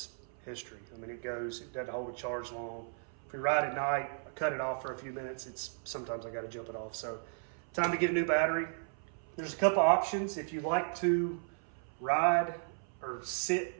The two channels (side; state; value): left; silent; 54 dB below the other